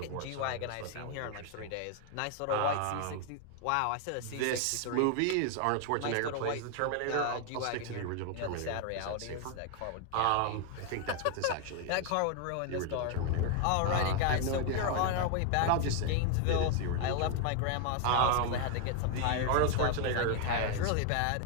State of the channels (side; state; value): both; different; correlation 0.00